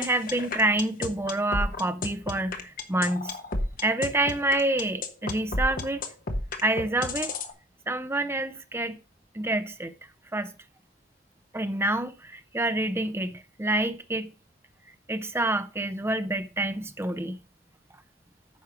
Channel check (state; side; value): normal; both; correlation 0.47